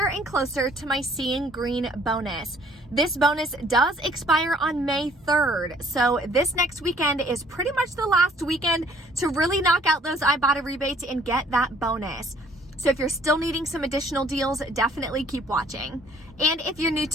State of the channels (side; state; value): both; normal; correlation 0.59